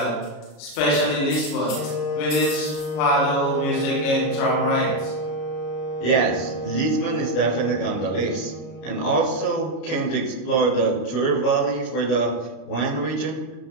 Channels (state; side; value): late; right; 33 ms